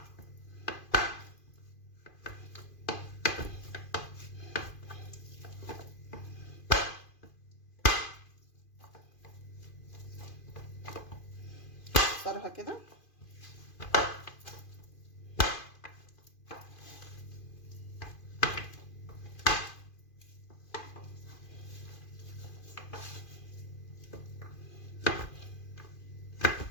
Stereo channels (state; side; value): late; right; 2.5 ms